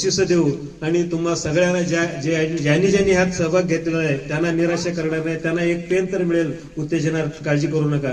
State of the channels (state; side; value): identical; both; correlation 1.00